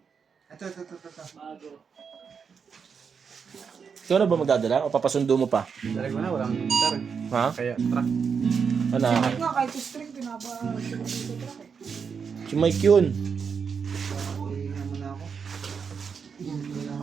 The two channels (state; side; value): quieter; left; 6.2 dB